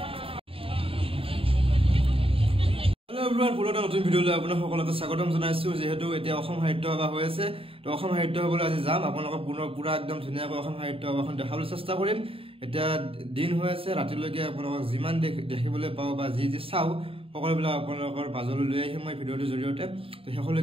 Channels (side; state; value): left; late; 0.27 ms